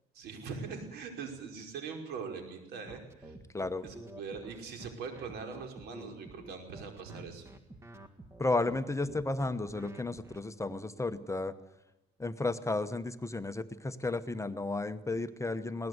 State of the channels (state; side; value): normal; both; correlation 0.74